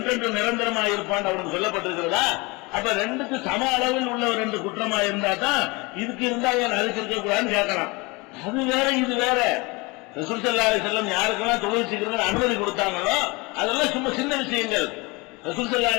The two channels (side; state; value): right; quieter; 25.8 dB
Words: நிரந்தரமா இருப்பான் அவனுக்கு சொல்லப்பட்டிருக்கிறதா? அப்ப ரெண்டுக்கு சம அளவில் உள்ள ஒரு ரெண்டு குற்றமா இருந்தா தான் இதுக்கு இருந்தா அதுக்கு இருக்கக்கூடாதுன்னு கேட்கலாம். அது வேற இது வேற. ரசூல் ஸல்லல்லாஹு அலைஹி வஸல்லம் யாருக்கெல்லாம் தொழுவிச்சுக்கிறது அனுமதி கொடுத்தாங்களோ அதெல்லாம் சும்மா சின்ன விஷயங்கள். ரசூல் ஸல்லல்லாஹு